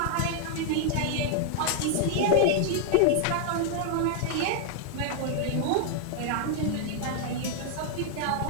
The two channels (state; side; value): different; both; correlation 0.00